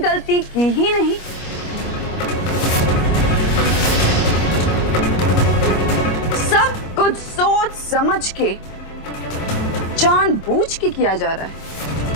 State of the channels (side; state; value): right; late; 25 ms